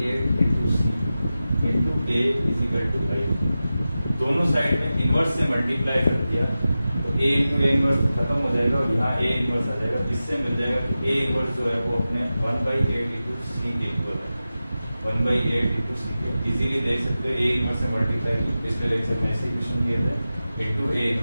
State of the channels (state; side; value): inverted; both; correlation -0.94